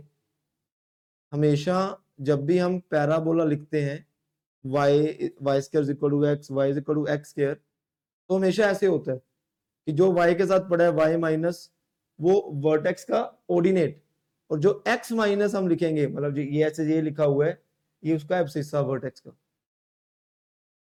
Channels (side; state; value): both; identical; correlation 1.00